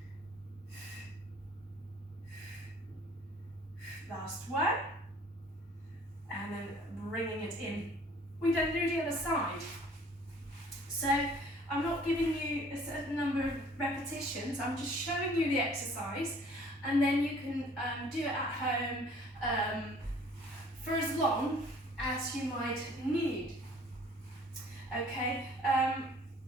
Last one. And then bringing it in. We then do the other side. So I'm not giving you a certain number of repetitions, I'm just showing you the exercise, and then you can do it at home for as long as you might need. Okay,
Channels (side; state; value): both; normal; correlation 0.54